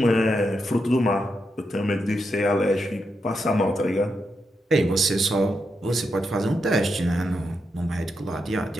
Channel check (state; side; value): normal; both; correlation 0.84